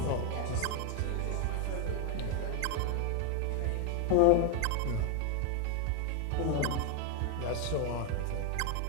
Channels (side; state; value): both; different; correlation 0.01